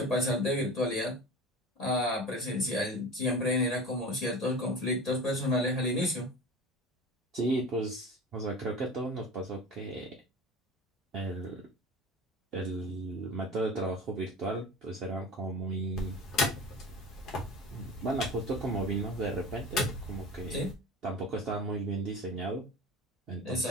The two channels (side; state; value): both; normal; correlation 0.34